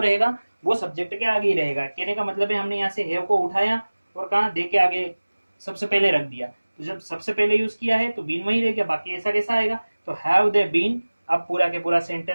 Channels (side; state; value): both; inverted; correlation -1.00